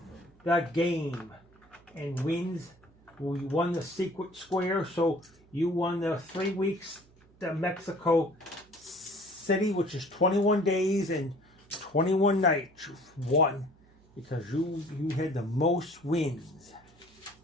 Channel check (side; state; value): right; noise; hum, 28 dB below the sound